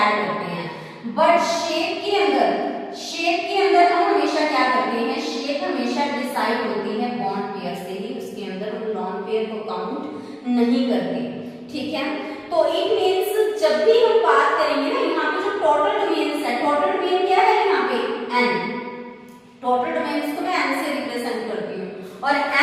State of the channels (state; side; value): identical; both; correlation 1.00